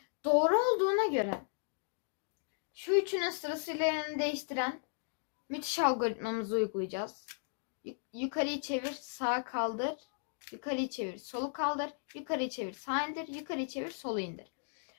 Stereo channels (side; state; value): right; silent; digital silence